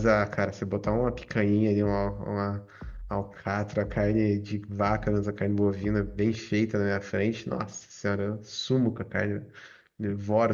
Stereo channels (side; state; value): both; identical; correlation 1.00